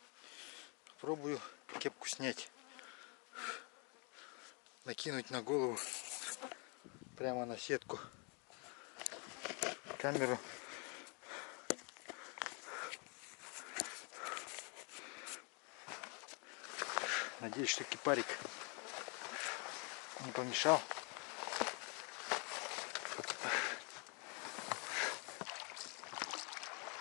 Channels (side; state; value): right; quieter; 35.1 dB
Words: Пробую кепку снять. Накинуть на голову. Прямо на сетку. Камеру. Надеюсь, что кипарик не помешал.